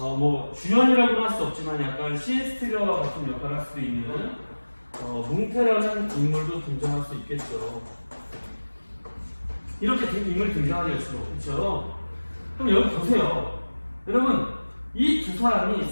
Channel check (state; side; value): inverted; both; correlation -1.00